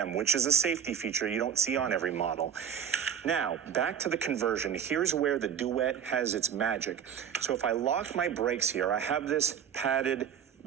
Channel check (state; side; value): quieter; left; 8.2 dB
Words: which is a safety feature you don't see on every model. Now, back to the conversion. Here's where the Duet has its magic. So if I lock my brakes here, I have this padded